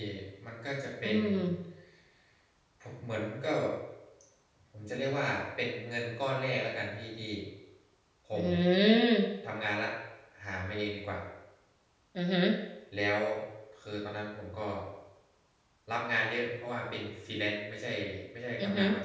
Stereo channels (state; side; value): identical; both; correlation 1.00